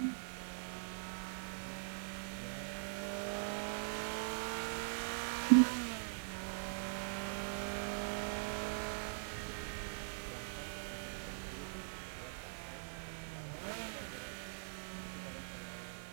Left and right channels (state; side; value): silent; left; digital silence